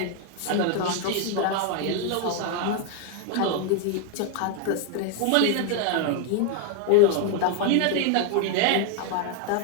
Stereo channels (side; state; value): both; different; correlation 0.01